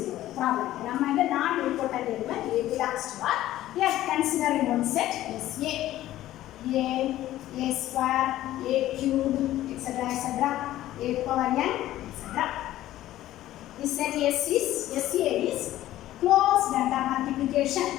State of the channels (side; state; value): right; quieter; 14.3 dB